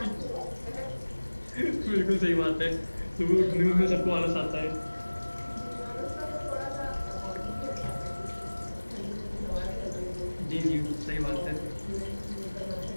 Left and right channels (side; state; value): both; inverted; correlation -1.00